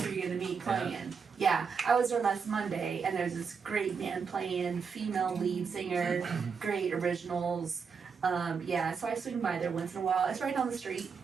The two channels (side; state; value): left; quieter; 5.9 dB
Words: who you're gonna meet playing? Yeah, I was there last Monday, and there's this great band playing, female lead singer, great originals. So I swing by there once in a while. It's right down the street.